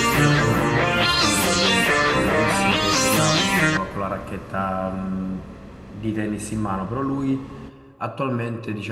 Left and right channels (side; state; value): both; identical; correlation 1.00